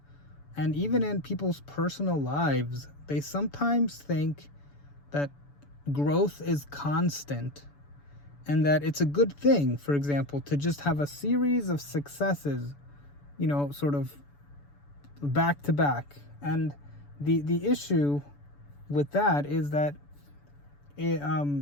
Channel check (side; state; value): right; late; 7.0 ms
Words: and even in people's personal lives. They sometimes think that growth is constant and that it's a good thing, for example, to just have a series of successes, sort of back to back. And the issue with that is that